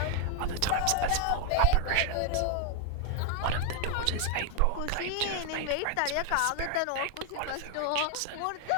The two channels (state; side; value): different; both; correlation 0.01